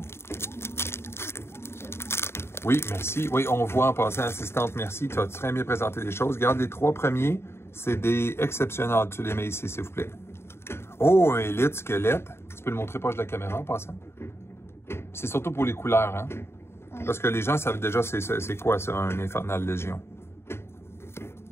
Oui, merci. Oui, on voit en passant, assistante, merci. Tu as très bien présenté les choses. Regarde, les 3 premiers, c'est des exceptionnels. Tu les mets ici, s'il vous plaît. Oh, un élite squelette. Tu peux le montrer proche de la caméra en passant. C'est surtout pour les couleurs, hein? Parce que les gens savent déjà c'est quoi ça, un Infernal Légion.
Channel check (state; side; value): late; right; 0.12 ms